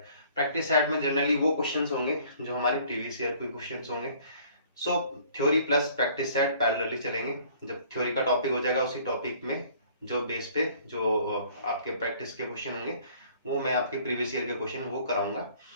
प्रैक्टिस सेट में जनरली वो क्वेश्चंस होंगे जो हमारे प्रीवियस ईयर के क्वेश्चंस होंगे। सो theory plus practice set parallelly चलेंगे। जब थ्योरी का टॉपिक हो जाएगा उसी टॉपिक में जो बेस पे जो आपके प्रैक्टिस के क्वेश्चन होंगे वो मैं आपके प्रीवियस ईयर के क्वेश्चन वो कराऊंगा।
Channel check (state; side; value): inverted; both; correlation -0.56